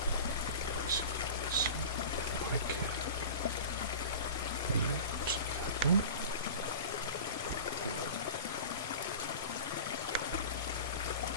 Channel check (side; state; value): both; inverted; correlation -0.34